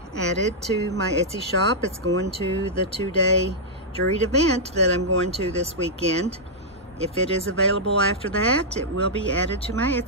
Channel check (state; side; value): normal; both; correlation -0.08